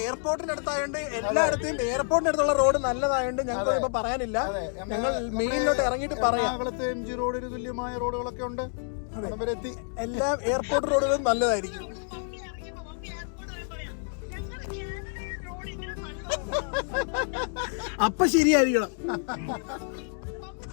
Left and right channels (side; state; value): right; silent; 59 dB below the other